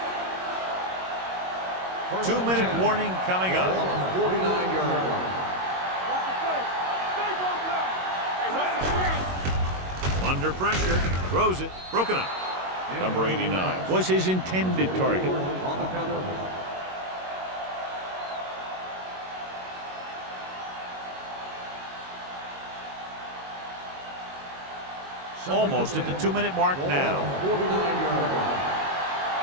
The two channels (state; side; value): late; left; 22 ms